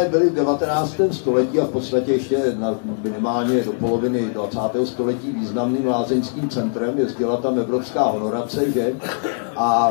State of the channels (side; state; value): right; silent; 64 dB below the other